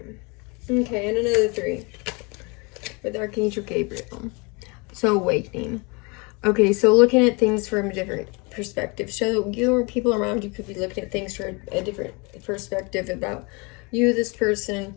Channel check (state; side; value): quieter; right; 29.5 dB